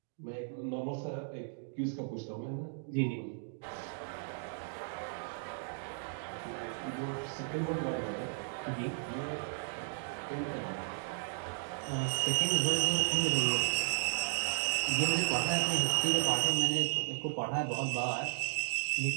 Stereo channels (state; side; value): silent; left; digital silence